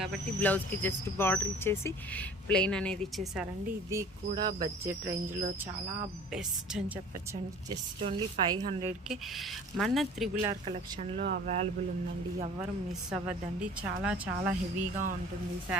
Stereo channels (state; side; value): normal; both; correlation 0.46